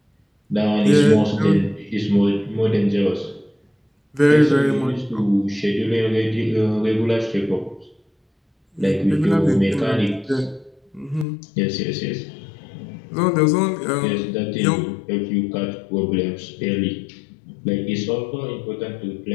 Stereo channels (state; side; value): drops out; right; at 11.2 s